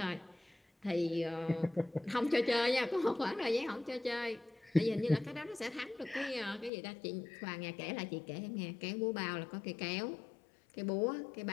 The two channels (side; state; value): right; drops out; at 6.7 s